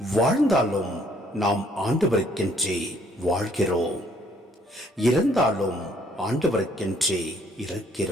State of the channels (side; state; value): both; normal; correlation 0.64